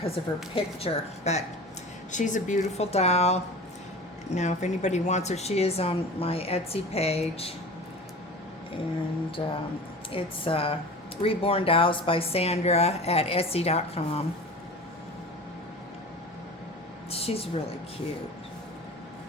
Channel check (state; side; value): normal; both; correlation 0.36